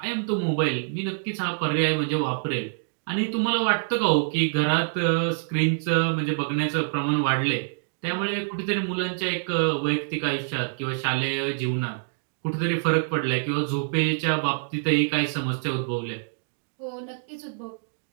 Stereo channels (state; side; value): silent; left; digital silence